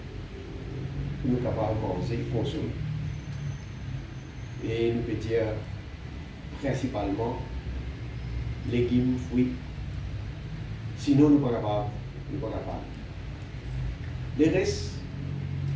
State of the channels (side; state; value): both; identical; correlation 1.00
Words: pour nous capables de manger, consommer. Et nous pouvons dire principalement légumes, fruits. Sinon, nous ne sommes pas capables. Le reste,